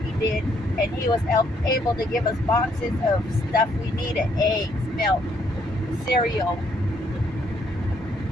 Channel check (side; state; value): both; normal; correlation 0.70